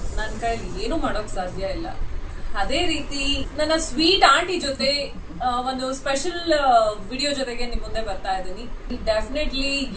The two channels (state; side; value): identical; both; correlation 1.00